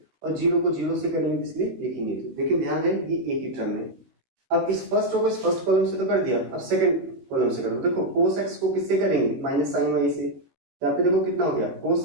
और जीरो को जीरो से करेंगे इसलिए लिखेंगे। देखिए ध्यान है ये एक ही टर्म है। अब इस फर्स्ट रो को इस फर्स्ट कॉलम से तो कर दिया, अब सेकंड कॉलम से करो। देखो cos x को किससे करेंगे, माइनस sin y से। यहाँ पे देखो कितना हो गया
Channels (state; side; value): late; left; 16 ms